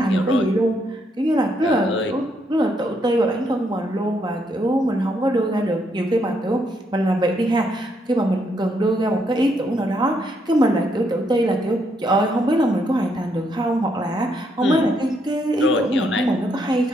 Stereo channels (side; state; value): both; normal; correlation 0.75